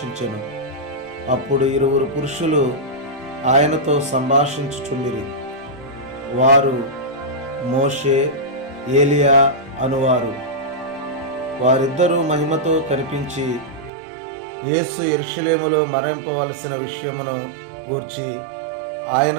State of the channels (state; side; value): drops out; left; at 13.9 s